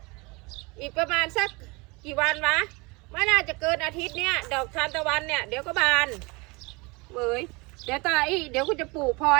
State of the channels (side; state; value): left; quieter; 26.6 dB